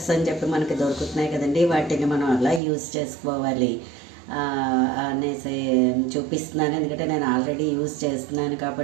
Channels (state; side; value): drops out; left; at 2.6 s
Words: అని చెప్పి మనకి దొరుకుతున్నాయి కదండి, వాటిని మనం అలా యూజ్ చేసుకోవాలి అనేసి చూపిస్తున్నాను. ఎందుకంటే నేను ఆల్రెడీ యూజ్ చేస్తున్నాను